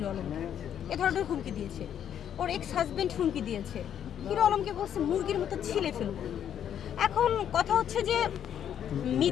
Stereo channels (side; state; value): right; quieter; 9.5 dB